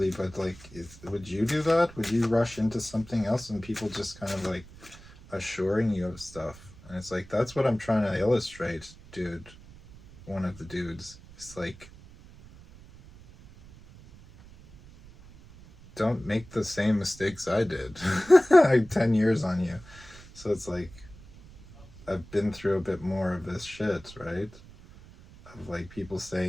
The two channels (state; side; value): noise; right; rumble, 20 dB below the sound